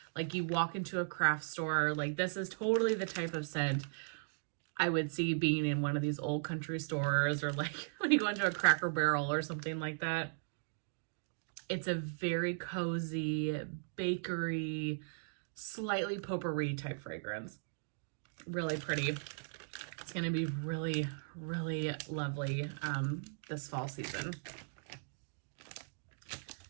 Like you walk into a craft store, like this is totally the type of scent I would see being in one of these Old Country stores, or like when you go into a Cracker Barrel or something like that. It's a very cozy, bakery, slightly potpourri type fragrance. Really pretty. It's going to be really, really lovely this fall season.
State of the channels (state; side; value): silent; left; digital silence